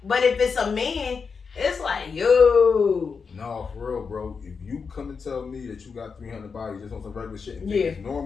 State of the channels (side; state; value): right; quieter; 5.4 dB